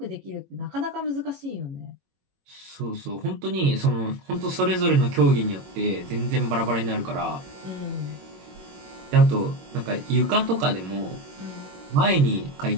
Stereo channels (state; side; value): late; left; 22 ms